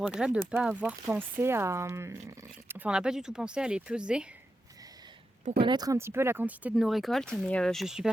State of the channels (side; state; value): both; normal; correlation 0.88